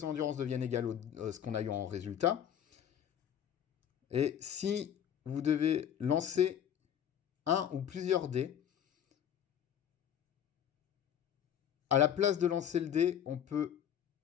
endurance deviennent égales à ce qu'on a eu en résultat. Et si vous devez lancer un ou plusieurs dés, à la place de lancer le dé, on peut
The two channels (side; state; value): right; quieter; 9.4 dB